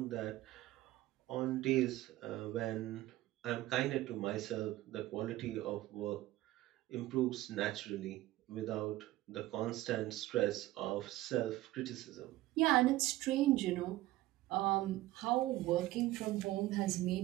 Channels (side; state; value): left; quieter; 16.6 dB